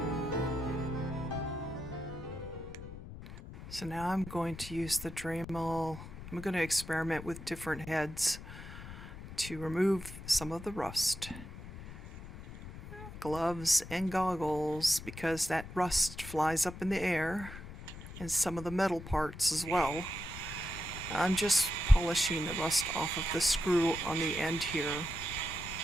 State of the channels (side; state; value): left; noise; rumble, 12 dB below the sound